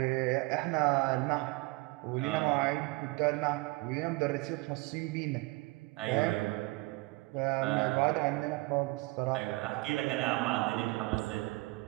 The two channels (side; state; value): left; quieter; 23.1 dB